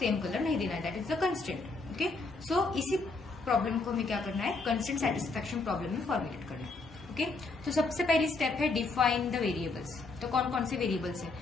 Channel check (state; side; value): quieter; right; 3.7 dB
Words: कलर नहीं देना है, that is the constraint. Okay, so इसी प्रॉब्लम को हमें क्या करना है? कंस्ट्रेंट सेटिस्फैक्शन प्रॉब्लम में फॉर्मुलेट करना है. ओके, तो सबसे पहली स्टेप है डिफाइन द वेरिएबल्स. तो कौन कौन से वेरिएबल्स है?